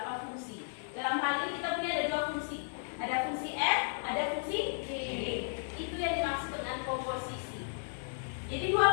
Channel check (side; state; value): right; silent; digital silence